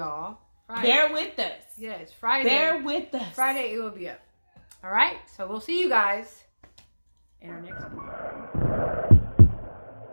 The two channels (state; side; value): inverted; both; correlation -1.00